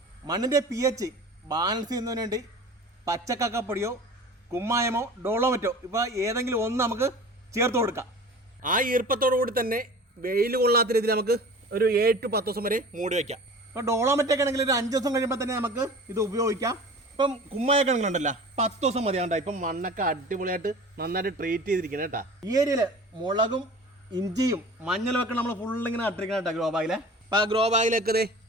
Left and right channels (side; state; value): both; normal; correlation 0.40